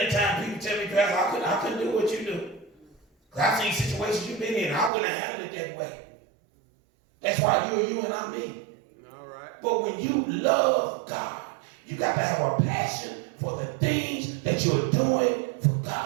times people tell me, Pastor, I couldn't do what you do. Because I've seen situations you've been in. I wouldn't have handled it that way. That's why you are you and I'm me. All right. But when you love God, you got to have a passion for the things that you're doing for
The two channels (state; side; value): drops out; left; at 4.9 s